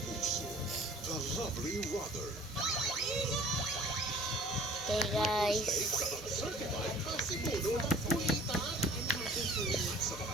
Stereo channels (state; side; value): normal; both; correlation 0.49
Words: puso, the lovely Rother. Okay, guys. Certified Pasimuno ng Kulitan.